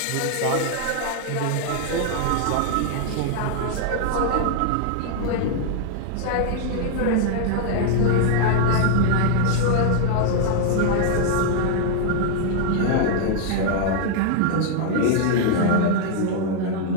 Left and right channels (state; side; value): different; both; correlation 0.00